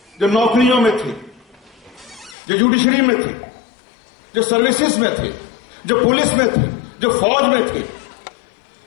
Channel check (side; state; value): right; drops out; at 2.4 s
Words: जो नौकरियों में थे, जो जुडिशरी में थे, जो सर्विसेज में थे, जो पुलिस में थे, जो फौज में थे,